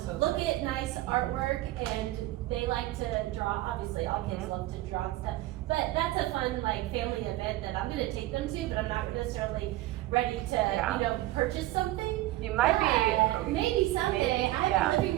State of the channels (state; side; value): quieter; left; 16.7 dB